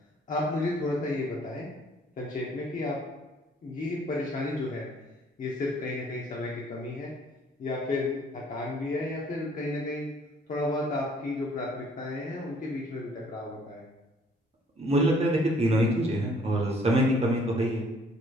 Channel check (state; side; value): normal; both; correlation 0.60